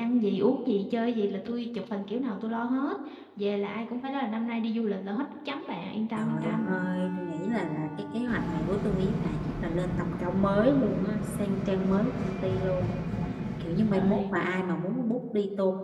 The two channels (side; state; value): both; identical; correlation 1.00